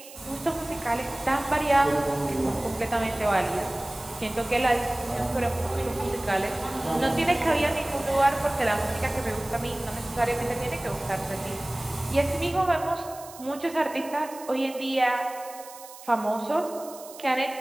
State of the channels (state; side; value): noise; right; hiss, 17 dB below the sound